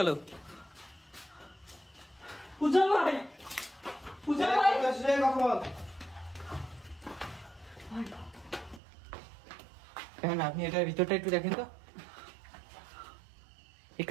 উজ্জ্বল ভাই, উজ্জ্বল ভাই কথা বল। কেন আপনি এটার ভিতরটা একটু দেখেন তো, এই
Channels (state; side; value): drops out; left; at 8.8 s